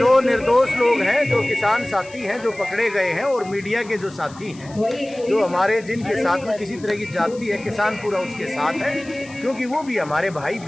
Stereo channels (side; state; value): left; noise; hiss, 22 dB below the sound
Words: निर्दोष लोग हैं, जो किसान साथी हैं, जो पकड़े गए हैं, और मीडिया के जो साथी हैं, जो हमारे जिनके साथ में किसी तरह की जाति है, किसान पूरा उसके साथ है, क्योंकि वो भी हमारे भाई